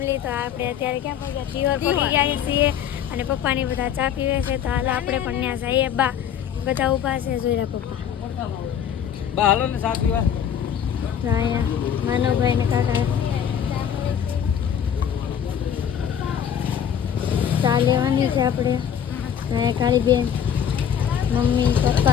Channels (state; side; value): quieter; right; 8.8 dB